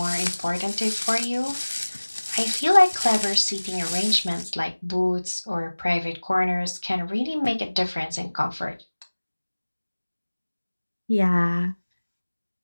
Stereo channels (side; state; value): both; inverted; correlation -1.00